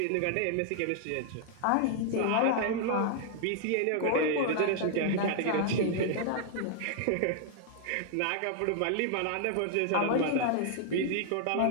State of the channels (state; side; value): different; both; correlation 0.00